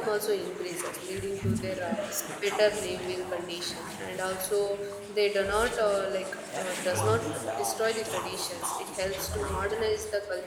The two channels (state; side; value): identical; both; correlation 1.00